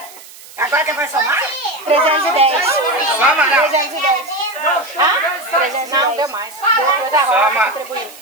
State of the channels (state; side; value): noise; right; hiss, 20 dB below the sound